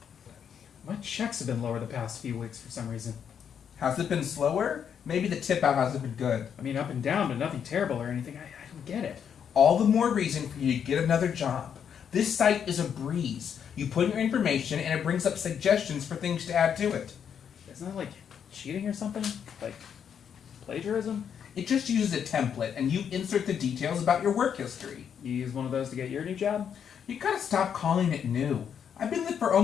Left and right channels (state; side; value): quieter; right; 8.0 dB